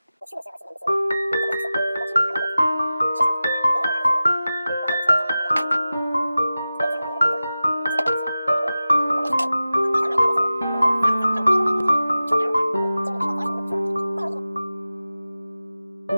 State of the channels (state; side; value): inverted; both; correlation -0.95